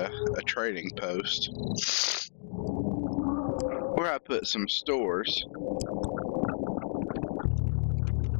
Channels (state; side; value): silent; right; digital silence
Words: trading post where I put some stores.